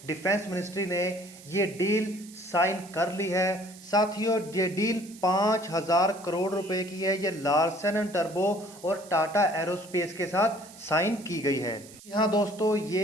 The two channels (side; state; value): right; noise; hiss, 20 dB below the sound